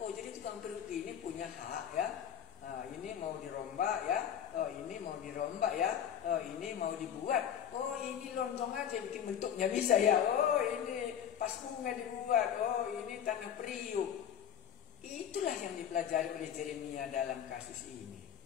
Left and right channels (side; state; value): right; quieter; 9.1 dB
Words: jadi tukang periuk ini punya hak ya. Nah, ini mau dirombak ya. Oh, ini mau dirombak ya. Oh, ini mau dibuat. Oh, ini lontong aja bikin bentuknya bisa ya. Oh, ini pas bunga dibuat. Oh, ini tanah periuk. Itulah yang dipelajari oleh Yeremia dalam kasus ini.